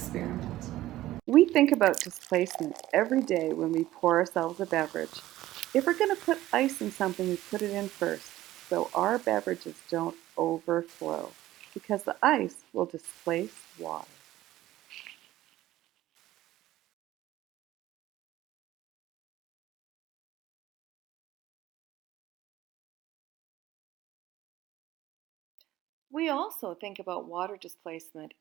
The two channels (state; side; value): quieter; left; 15.3 dB